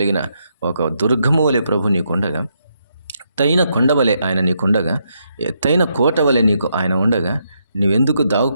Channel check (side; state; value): both; inverted; correlation -0.79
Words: ఒక దుర్గము వలె ప్రభు నీకుండగా, ఎత్తైన కొండ వలె ఆయన నీకుండగా, ఎత్తైన కోట వలె నీకు ఆయన ఉండగా, నువ్వెందుకు